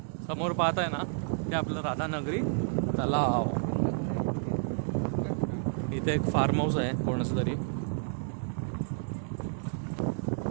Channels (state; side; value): silent; left; 57 dB below the other